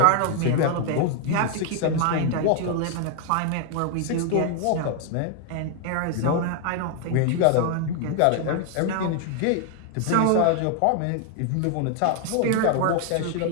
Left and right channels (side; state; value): both; different; correlation 0.00